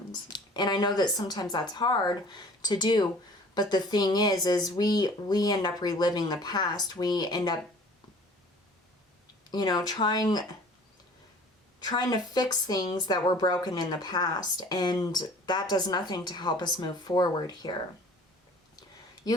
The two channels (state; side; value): normal; both; correlation 0.49